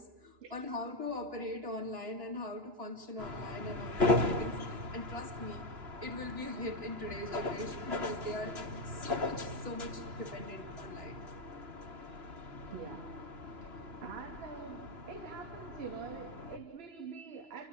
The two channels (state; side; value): late; left; 2.9 ms